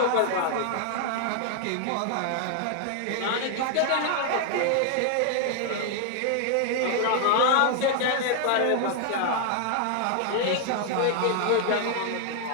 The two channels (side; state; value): both; different; correlation 0.00